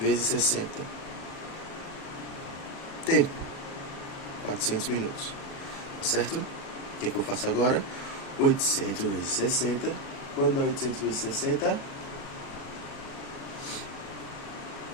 60. Tempo, 400 minutos, tá certo? O que eu faço agora? 800 vezes 60. Quando dá 800 vezes 60?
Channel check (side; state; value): right; late; 37 ms